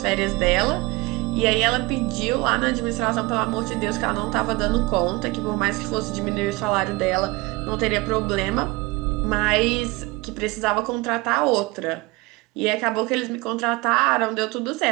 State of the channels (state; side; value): quieter; left; 23.4 dB